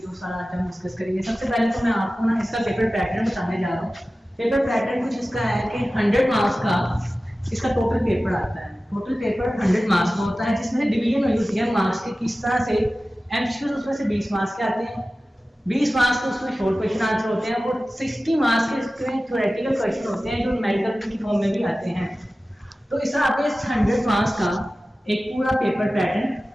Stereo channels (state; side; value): normal; both; correlation 0.96